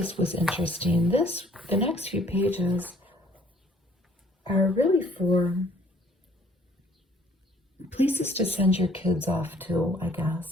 was interesting. The next few pages are really for places to send your kids off to, I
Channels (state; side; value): normal; both; correlation 0.59